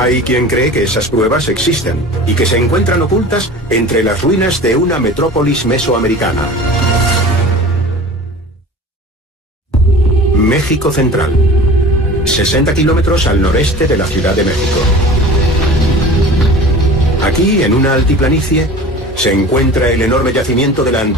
quien cree que esas pruebas existen y que se encuentran ocultas entre las ruinas de una metrópolis mesoamericana. México Central, 60 kilómetros al noreste de la Ciudad de México. Aquí, en una altiplanicie, se encuentra el enorme yacimiento de la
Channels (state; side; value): normal; both; correlation 0.39